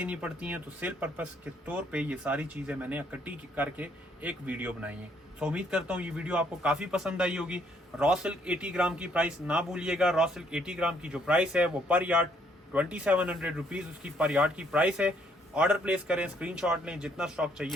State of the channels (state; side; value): normal; both; correlation 0.68